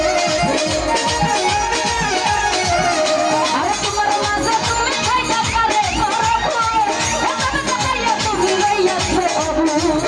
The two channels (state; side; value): identical; both; correlation 1.00